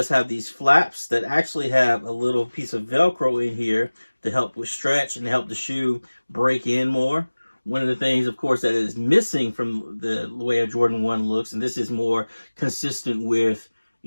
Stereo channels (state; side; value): inverted; both; correlation -1.00